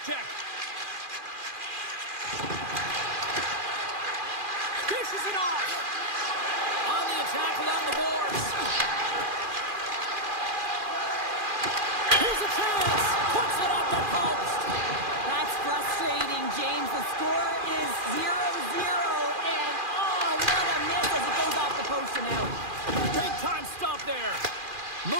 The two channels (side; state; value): left; late; 2.4 ms